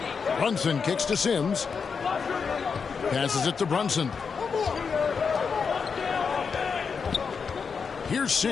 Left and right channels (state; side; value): quieter; right; 5.7 dB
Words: Brunson kicks to Sims. Passes it to Brunson. Here's